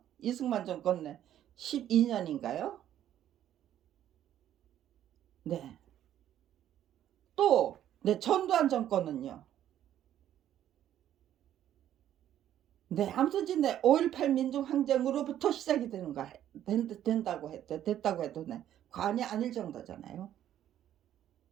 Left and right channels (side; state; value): left; quieter; 11.4 dB